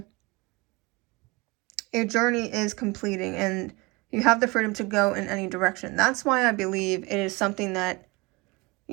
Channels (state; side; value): quieter; left; 25.1 dB